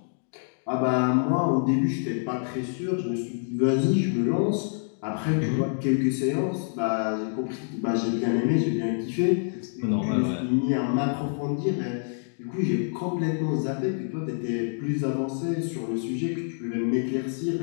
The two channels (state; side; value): silent; right; digital silence